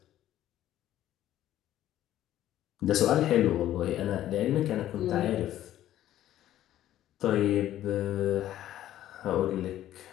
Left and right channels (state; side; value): quieter; right; 12.8 dB